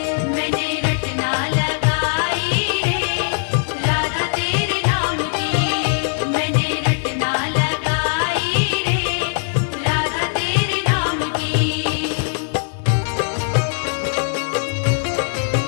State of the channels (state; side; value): silent; right; digital silence